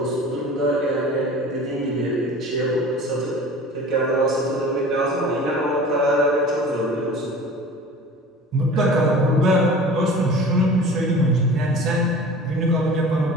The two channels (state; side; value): normal; both; correlation 0.41